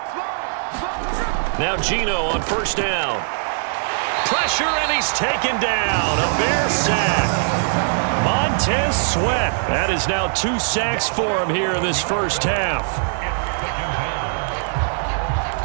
Now Gino on first down. Pressure, and he's taken down. A Bear sack. Montez Sweat. That is now 2 sacks for him here in this first half.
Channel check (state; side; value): silent; left; digital silence